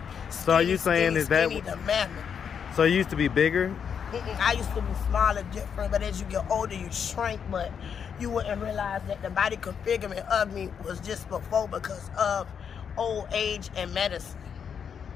skinny, so are you saying skinny, is that skinny to mammoth. So you used to be bigger? I used to be smaller, different, but as you get older, you shrink, but you wouldn't realize that the body configurement of me was just before because of old age and medicine.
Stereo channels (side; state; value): right; quieter; 7.3 dB